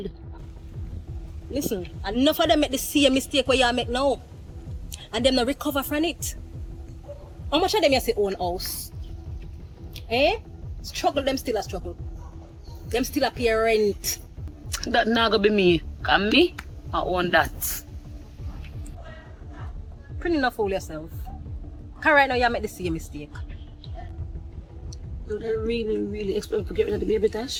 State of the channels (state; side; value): identical; both; correlation 1.00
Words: Listen, enough of them make the same mistake where you make now. And them not recover from it. How much of them you say own house? Eh? Struggle them still a struggle. Them still a pay rent. That not gonna be me. Can me? I own that. Pretty enough fool yourself. Because right now you make the same mistake. Do they really expect to get rid of the baby,